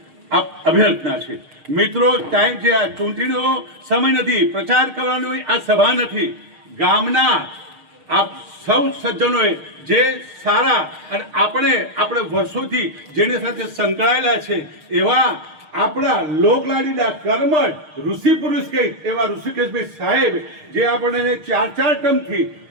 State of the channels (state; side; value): late; left; 6.5 ms